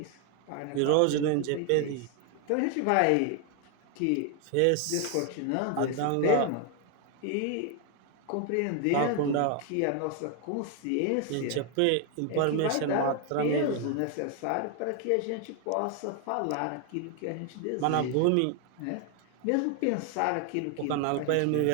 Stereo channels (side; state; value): both; different; correlation 0.01